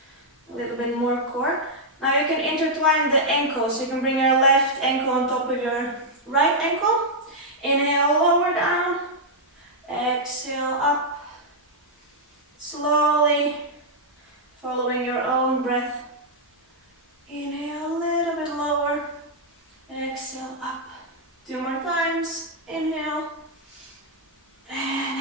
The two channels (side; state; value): both; normal; correlation -0.06